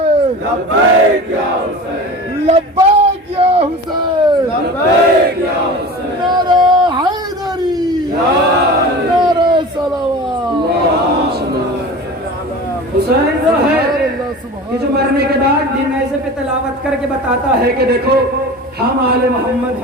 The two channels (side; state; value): both; normal; correlation 0.35